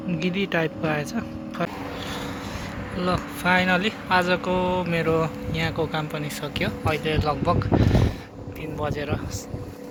गिरी टाइपको आएछ। ल फाइनली आजको मेरो यहाँको काम पनि सक्यो। अहिले लगभग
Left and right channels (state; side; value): identical; both; correlation 1.00